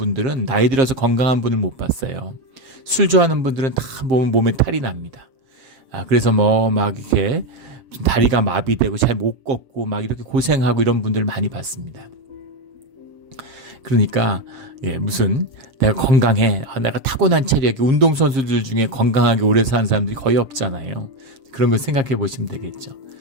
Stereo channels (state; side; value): late; left; 7.5 ms